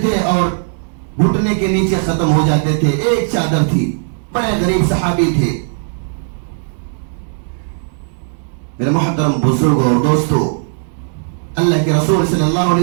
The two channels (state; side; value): silent; left; digital silence